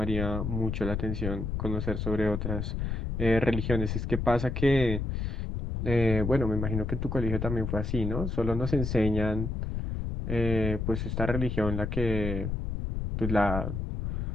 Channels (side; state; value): left; noise; rumble, 2 dB below the sound